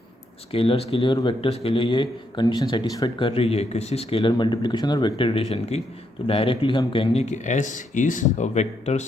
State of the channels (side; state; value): both; normal; correlation 0.78